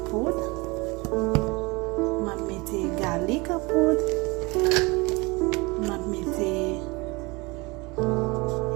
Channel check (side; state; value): left; quieter; 25.4 dB